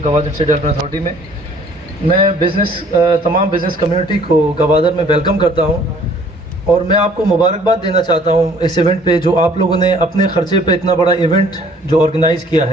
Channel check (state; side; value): normal; both; correlation 0.56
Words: गवादर स्टेट डेवलपमेंट अथॉरिटी में। मैं तमाम बिज़नेस कम्युनिटी को गवादर में वेलकम करता हूँ और मैं आपको मुबारकबाद देना चाहता हूँ इस इवेंट पे जो आप लोगों ने अपने ख़र्चे पे इतना बड़ा इवेंट जो ऑर्गेनाइज़ किया